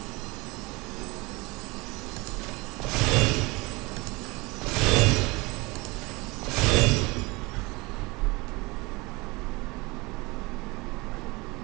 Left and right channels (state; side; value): quieter; left; 24.4 dB